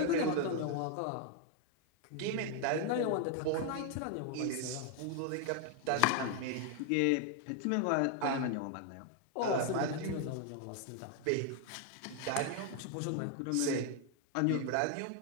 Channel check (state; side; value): different; both; correlation 0.00